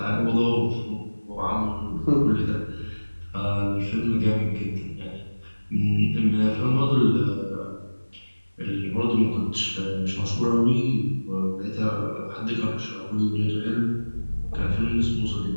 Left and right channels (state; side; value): inverted; both; correlation -1.00